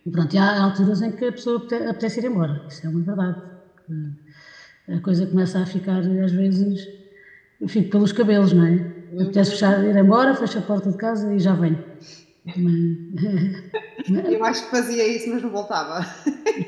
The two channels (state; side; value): identical; both; correlation 1.00